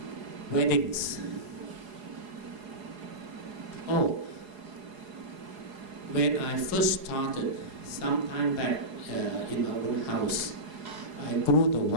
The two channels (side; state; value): left; late; 4.8 ms